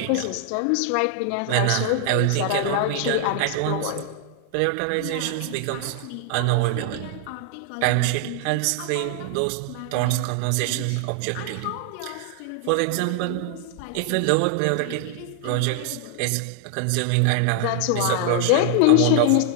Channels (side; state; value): both; different; correlation 0.00